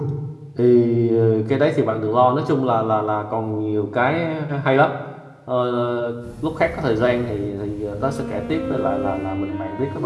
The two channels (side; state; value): both; identical; correlation 1.00